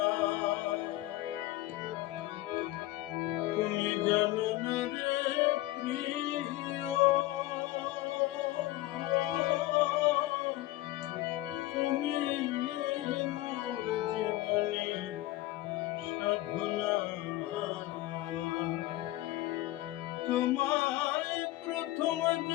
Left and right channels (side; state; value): right; quieter; 17.0 dB